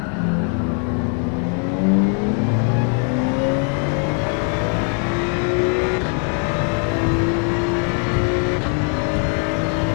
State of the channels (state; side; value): quieter; right; 39.3 dB